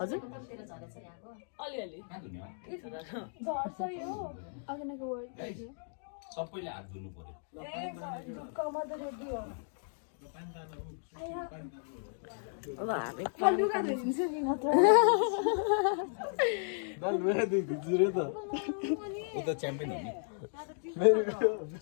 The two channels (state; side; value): silent; right; digital silence